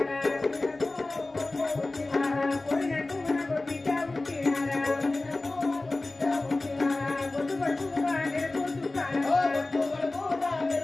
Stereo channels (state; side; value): quieter; right; 3.1 dB